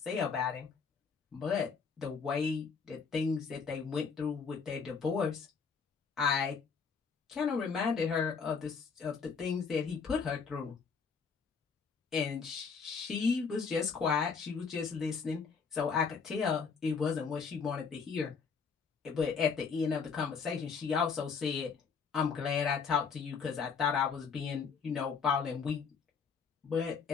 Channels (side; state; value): right; quieter; 5.7 dB